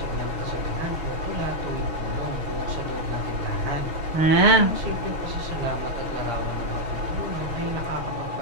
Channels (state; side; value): late; left; 6.3 ms